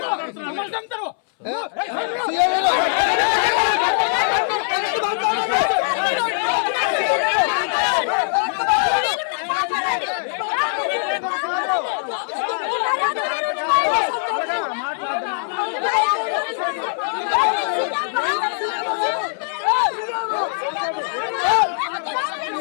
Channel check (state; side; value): silent; right; 62 dB below the other